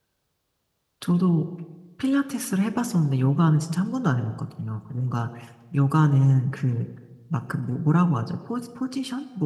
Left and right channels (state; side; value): identical; both; correlation 1.00